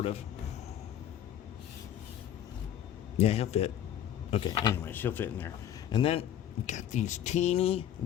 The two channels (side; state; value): right; quieter; 10.5 dB